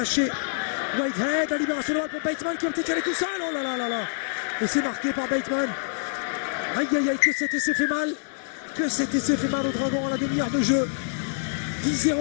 Whitehead, la libération de pour Bateman qui a été calé tout seul. Oh là là là là. Et c'est marqué par Bateman. Aïe aïe aïe, que cet essai fait mal. Au Dragon à la demi-heure de jeu. 10-0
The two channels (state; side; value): silent; right; digital silence